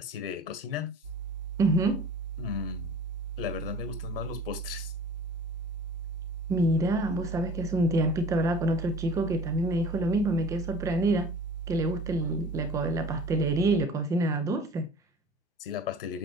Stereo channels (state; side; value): normal; both; correlation 0.43